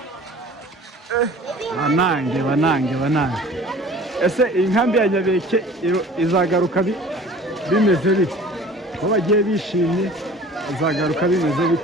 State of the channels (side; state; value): both; normal; correlation 0.45